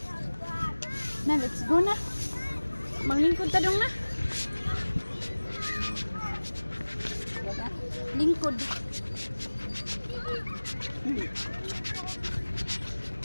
Na, let's go na. Manglingkod ta dong na. Lingkod.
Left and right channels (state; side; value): inverted; both; correlation -1.00